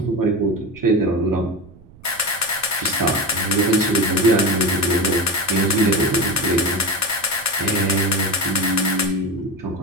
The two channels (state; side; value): noise; right; rumble, 24 dB below the sound